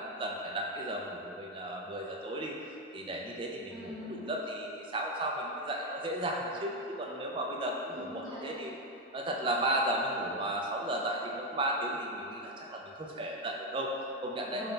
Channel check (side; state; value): both; normal; correlation 0.07